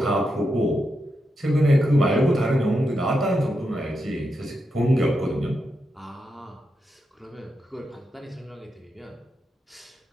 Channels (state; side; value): normal; both; correlation 0.86